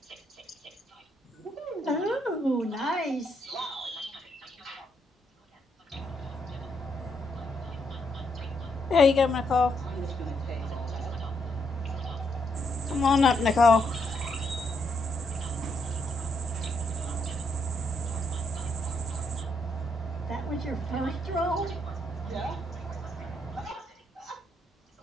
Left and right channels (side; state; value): both; normal; correlation 0.76